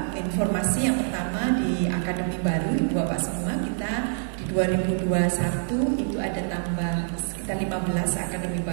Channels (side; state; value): left; silent; digital silence